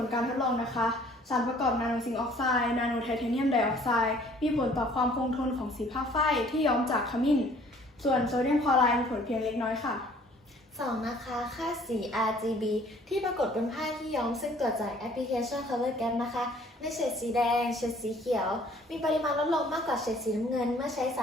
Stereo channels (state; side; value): normal; both; correlation 0.56